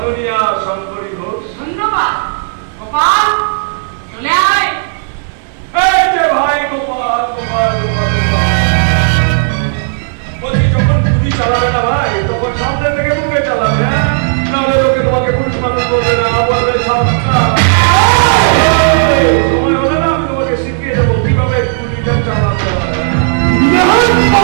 শঙ্করী ঘোষ, ধন্যবাদ। গোপাল চলে আয়। এই যে ভাই গোপাল, বলছি যখন গুলি চালাবে না ভাই, তখন সামনে থেকে মুখে চালাবে, নাহলে লোকে তোমাকে পুরুষ মানুষ বলবে না, বলবে সময় হলে না আমি তোমাকে শিখিয়ে দেবো কিভাবে গুলিটা চালাতে হয়।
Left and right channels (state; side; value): silent; left; digital silence